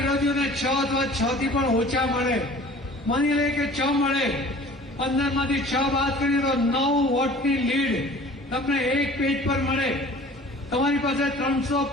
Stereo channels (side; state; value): both; normal; correlation 0.46